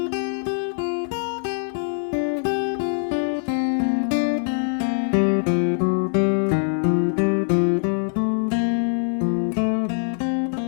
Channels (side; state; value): right; silent; digital silence